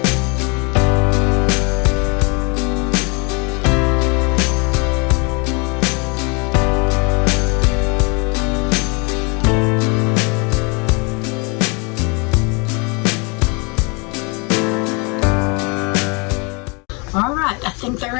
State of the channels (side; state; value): right; quieter; 31.8 dB